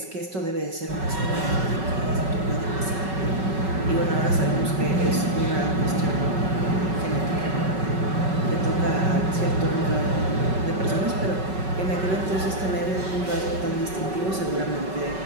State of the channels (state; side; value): late; left; 5.3 ms